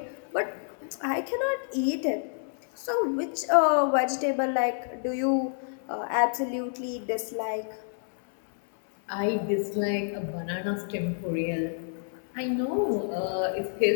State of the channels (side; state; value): right; silent; digital silence